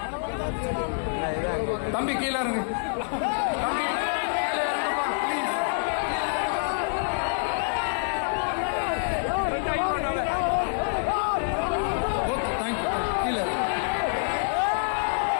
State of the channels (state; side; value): silent; right; 60 dB below the other